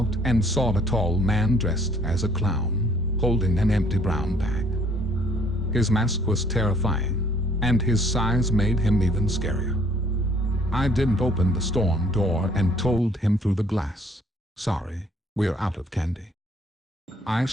and saw a tall man dressed as a clown, holding an empty brown bag. His mask was terrifying, and his size made him even scarier. I didn't open the storm door and told him through the glass, "Sorry, we're out of candy." I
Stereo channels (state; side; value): normal; both; correlation 0.61